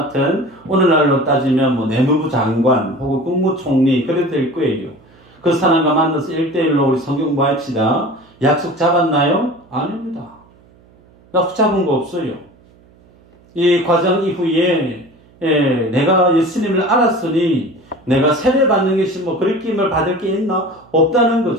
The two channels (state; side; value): noise; right; hum, 29 dB below the sound